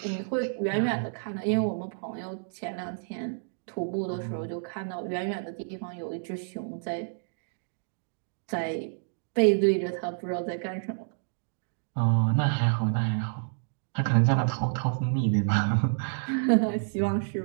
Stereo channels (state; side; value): silent; left; digital silence